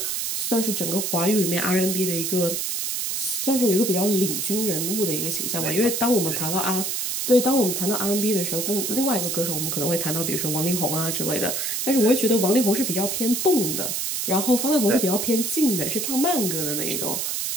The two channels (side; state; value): right; noise; hiss, 1 dB below the sound